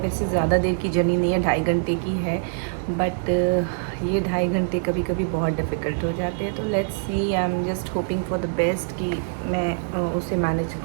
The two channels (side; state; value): left; silent; digital silence